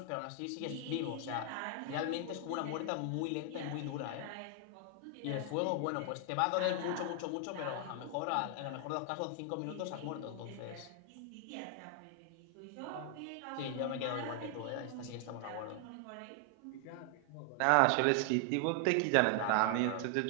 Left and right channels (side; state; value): both; different; correlation 0.00